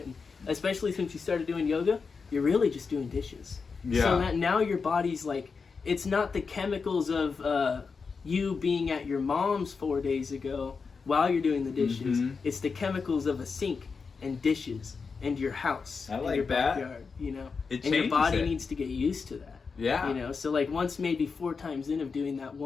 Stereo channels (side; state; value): right; quieter; 5.1 dB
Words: you started doing yoga, you're really just doing dishes. Yeah. So that now your body's like, it's not the chemicals of you being at your mom's 4 days ago while you're doing the dishes. Mhm. It's the chemicals of a sink and dishes and your house I and like your that. backyard, you know? It And your changes body it. needs to get used to that. Yeah. You know, so like once maybe 4 times in of doing that